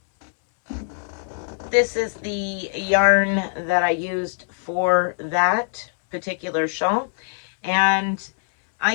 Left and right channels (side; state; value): right; silent; 64 dB below the other